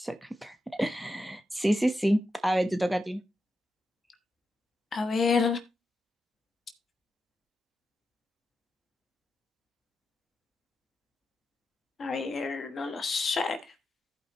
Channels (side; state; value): both; normal; correlation 0.88